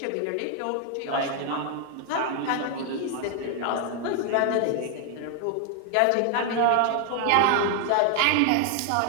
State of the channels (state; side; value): different; both; correlation 0.00